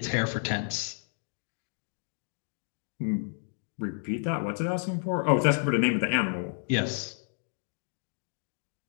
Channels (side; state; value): right; silent; 57 dB below the other